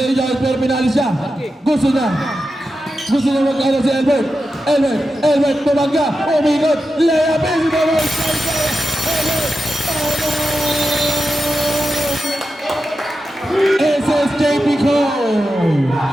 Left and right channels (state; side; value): normal; both; correlation 0.90